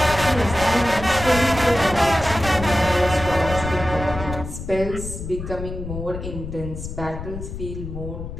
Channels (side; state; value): left; noise; rumble, 8 dB below the sound